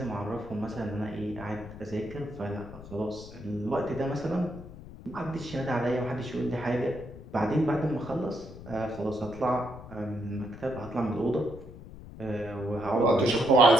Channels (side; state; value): left; noise; rumble, 15 dB below the sound